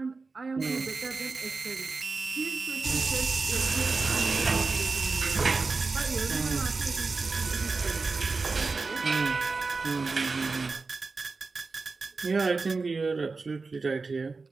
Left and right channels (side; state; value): left; quieter; 4.1 dB